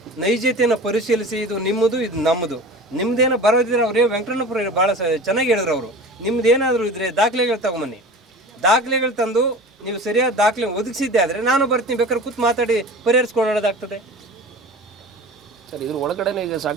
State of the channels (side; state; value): both; normal; correlation 0.37